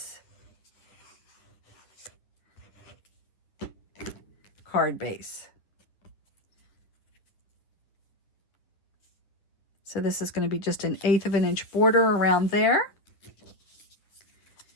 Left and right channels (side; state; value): right; late; 9.7 ms